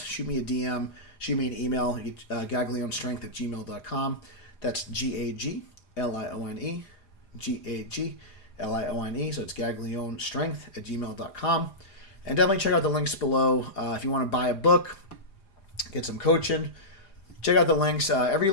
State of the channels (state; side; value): late; right; 4.9 ms